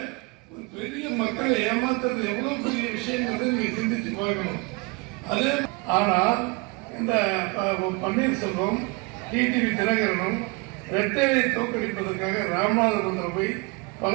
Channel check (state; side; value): quieter; left; 28.2 dB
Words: பெரிய மக்களை ஏமாத்துறது எவ்வளவு பெரிய விஷயங்கிறத நீங்க சிந்திச்சு பார்க்கணும். அதே ஆனால் இந்த பன்னீர்செல்வம் டிடிவி தினகரனும் ரெட்டையை தோற்கடிப்பதற்காக ராமநாதபுரத்தில் போய்